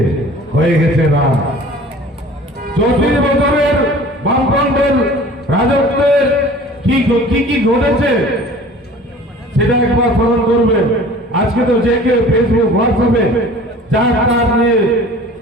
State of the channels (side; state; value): both; normal; correlation 0.45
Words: হয়ে গেছে নাম। 34 বছরের বামফ্রন্টের রাজত্বের কি ঘটেছে সেটা একবার স্মরণ করবেন। আজকে তো যে কেউ ফেসবুক, হোয়াটসঅ্যাপে যার নিয়ে